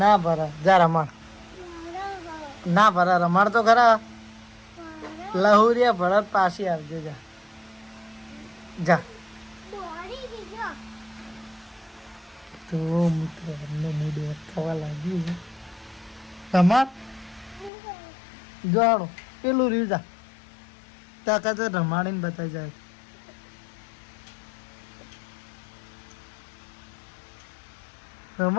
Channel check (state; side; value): drops out; right; at 17.7 s